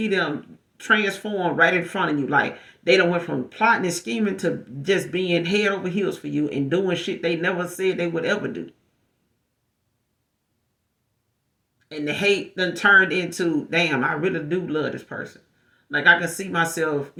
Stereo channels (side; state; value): both; identical; correlation 1.00